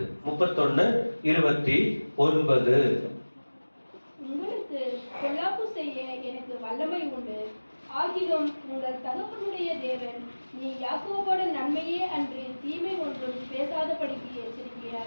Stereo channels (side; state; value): both; inverted; correlation -1.00